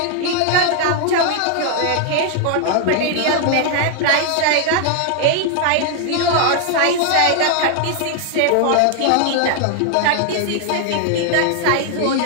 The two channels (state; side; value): different; both; correlation 0.00